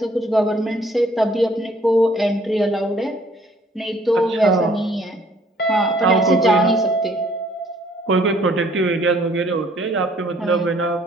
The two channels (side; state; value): both; normal; correlation 0.60